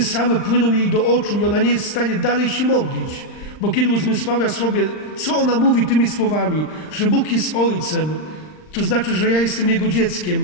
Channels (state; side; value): late; right; 39 ms